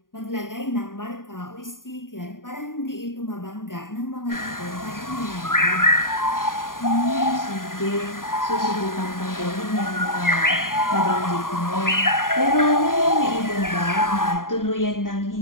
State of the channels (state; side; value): late; right; 0.90 ms